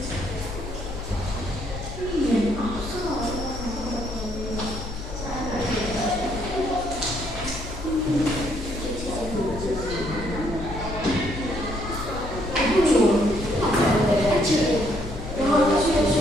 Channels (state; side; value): noise; left; hum, 10 dB below the sound